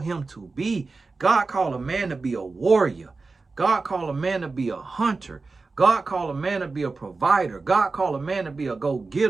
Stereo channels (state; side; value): quieter; left; 3.9 dB